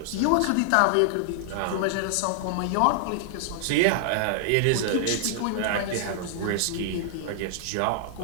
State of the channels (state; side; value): different; both; correlation -0.01